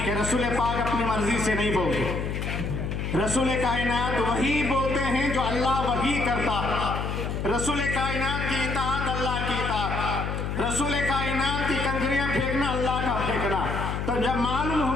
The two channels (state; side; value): noise; left; hum, 3 dB below the sound